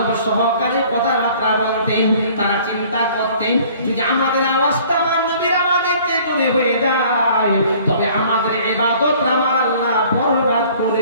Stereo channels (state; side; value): inverted; both; correlation -0.53